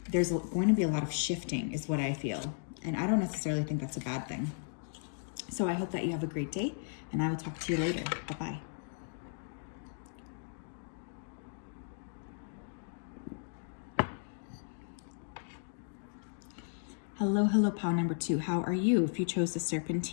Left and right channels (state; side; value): silent; right; digital silence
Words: there's going to be a lot of shifting is what I feel. And I don't necessarily think that's a bad thing. So I hope that you have a great day, and I will talk to you later. Bye-bye. Hello, pile #2. How are you? If you chose the